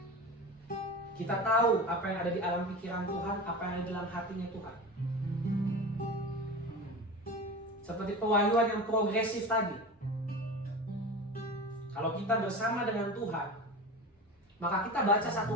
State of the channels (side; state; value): both; normal; correlation 0.30